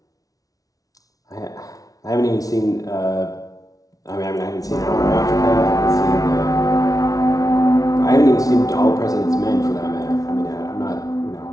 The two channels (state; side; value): late; right; 0.18 ms